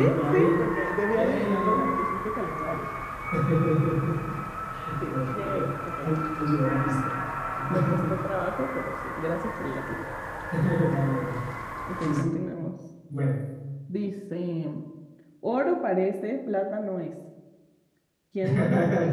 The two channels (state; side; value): identical; both; correlation 1.00